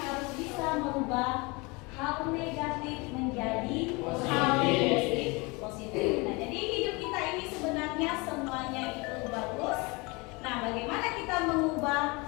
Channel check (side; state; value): right; quieter; 26.9 dB